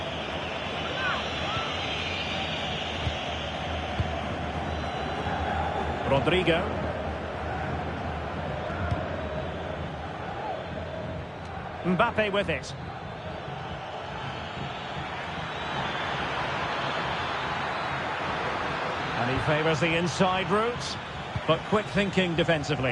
Rodrigo. Mbappe with it. And he favours the inside route, but quick thinking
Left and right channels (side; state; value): both; identical; correlation 1.00